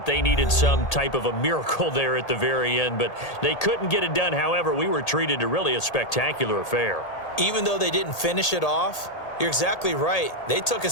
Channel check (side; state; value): right; late; 1.8 ms